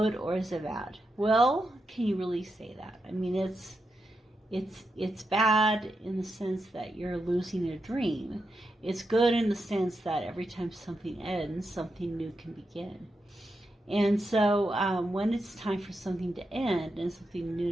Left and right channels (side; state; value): both; normal; correlation 0.86